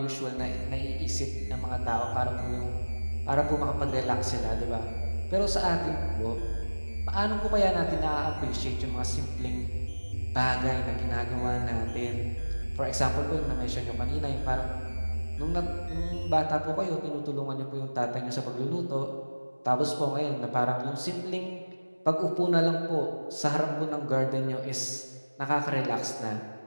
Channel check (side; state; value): both; inverted; correlation -1.00